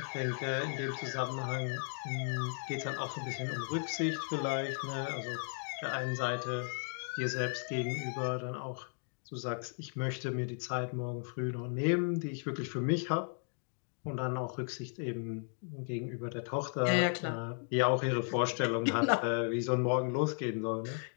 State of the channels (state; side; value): silent; right; 54 dB below the other